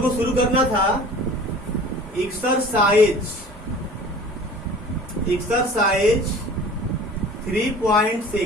को शुरू करना था एक्सरसाइज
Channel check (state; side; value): normal; both; correlation 0.44